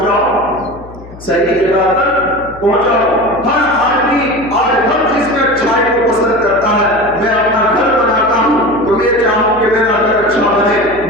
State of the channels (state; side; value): noise; left; hum, 18 dB below the sound